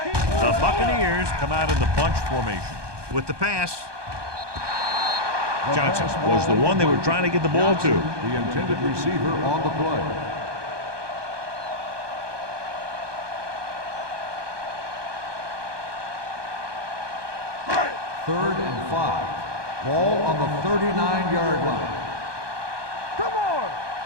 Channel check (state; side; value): late; left; 1.2 ms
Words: Buccaneers come out in the bunch formation. With the pass, Johnson was the one they were trying to get the ball to. The intended receiver on the play. Third and 5. Ball on the 39-yard line. Come on.